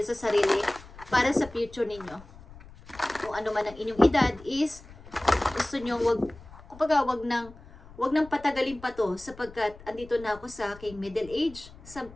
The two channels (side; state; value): left; noise; rumble, 19 dB below the sound